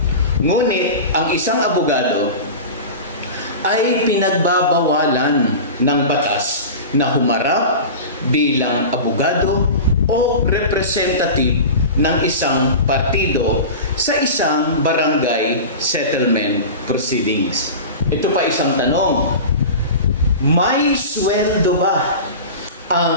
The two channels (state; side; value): inverted; both; correlation -0.31